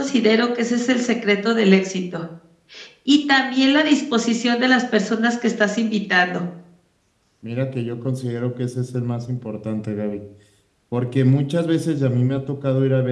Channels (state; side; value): identical; both; correlation 1.00